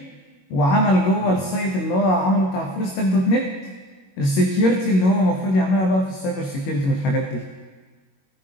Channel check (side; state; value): right; late; 22 ms